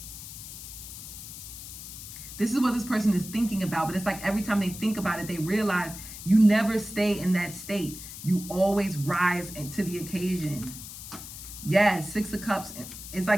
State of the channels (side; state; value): left; noise; hiss, 12 dB below the sound